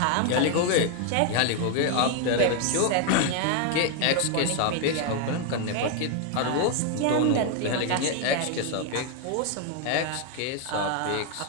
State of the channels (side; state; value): both; different; correlation 0.01